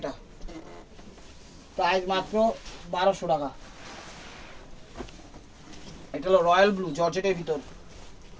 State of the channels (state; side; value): identical; both; correlation 1.00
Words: প্রাইস মাত্র 1200 টাকা। এটা হলো রয়্যাল ব্লু জর্জেটের ভিতর,